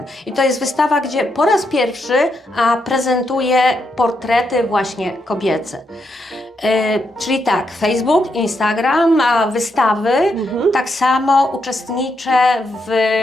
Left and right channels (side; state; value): both; normal; correlation 0.80